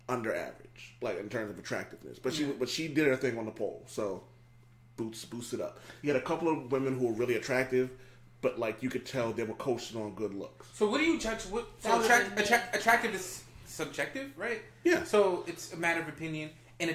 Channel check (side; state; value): both; identical; correlation 1.00